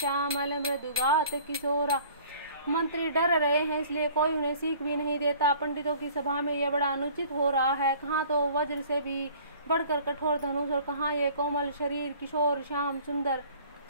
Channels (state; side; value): inverted; both; correlation -0.51